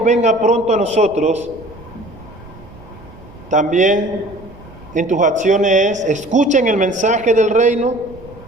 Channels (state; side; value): noise; right; rumble, 20 dB below the sound